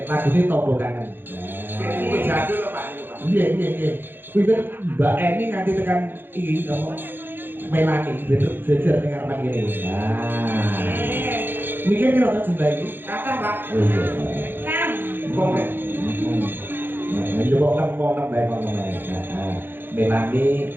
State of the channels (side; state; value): left; late; 0.098 ms